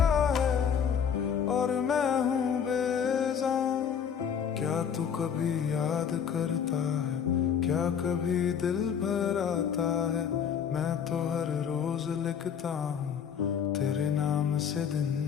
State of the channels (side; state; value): right; quieter; 7.7 dB